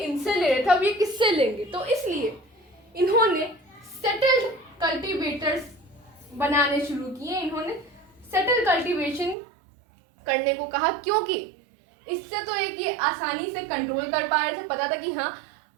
ले रहे थे अब ये किससे लेंगे, तो इसलिए इन्होंने सेटल्ड कल्टीवेटर्स बनाने शुरू किए। इन्होंने सेटल कल्टीवेशन करने को कहा, क्योंकि इससे तो एक ये आसानी से कंट्रोल कर पा रहे थे, पता था कि हाँ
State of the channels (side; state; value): left; drops out; at 9.3 s